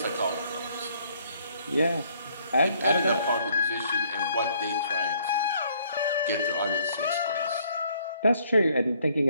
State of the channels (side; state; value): both; inverted; correlation -0.65